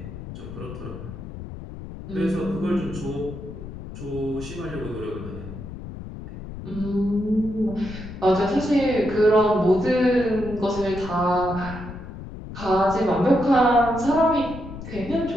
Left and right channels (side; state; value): left; noise; rumble, 11 dB below the sound